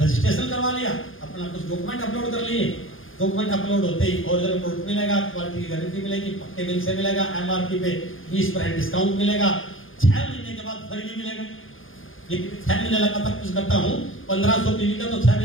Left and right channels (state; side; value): late; right; 0.59 ms